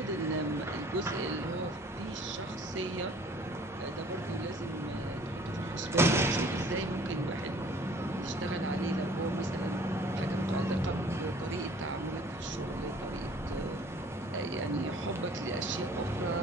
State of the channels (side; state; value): both; normal; correlation 0.53